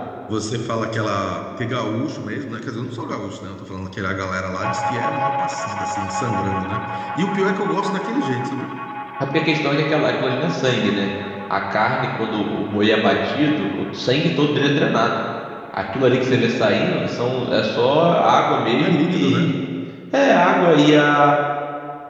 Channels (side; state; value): both; identical; correlation 1.00